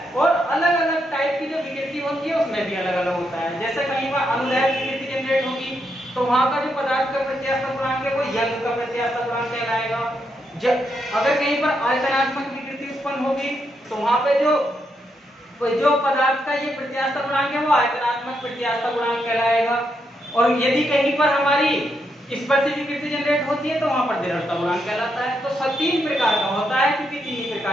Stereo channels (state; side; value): normal; both; correlation 0.80